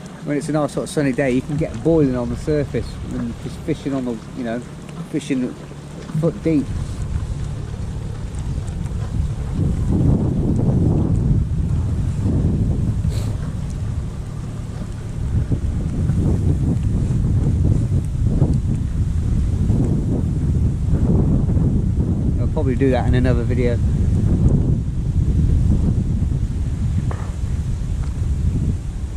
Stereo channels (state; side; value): identical; both; correlation 1.00